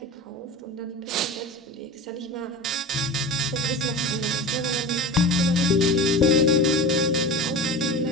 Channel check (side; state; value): both; normal; correlation 0.30